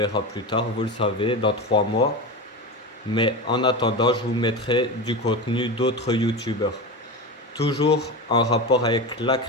plus tard, vous le savez, dans 3 mois. Mais en attendant, je vous mettrai du contenu d'autres youtubeurs. Toujours en rapport avec la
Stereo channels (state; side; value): normal; both; correlation 0.23